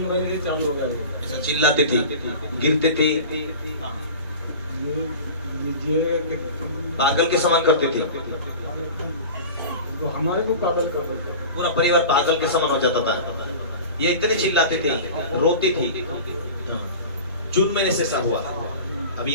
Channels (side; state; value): both; inverted; correlation -0.35